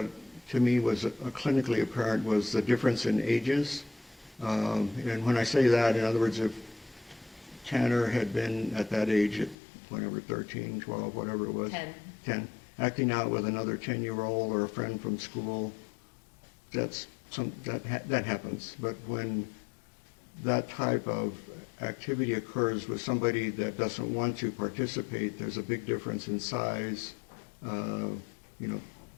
to me was clinically apparent was the difference in ages. And when I say that, in other words, if Tanner had been at that age at whenever, 13, 12, whatever it was. 10. Acting out with another 10-year-old or a friend from school, that happens. But when that type of activity occurs with somebody that doesn't want to participate, there's a big difference in size,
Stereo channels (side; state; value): right; drops out; at 9.6 s